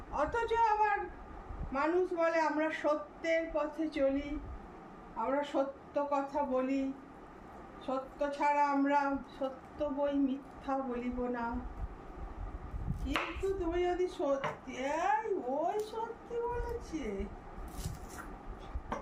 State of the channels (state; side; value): identical; both; correlation 1.00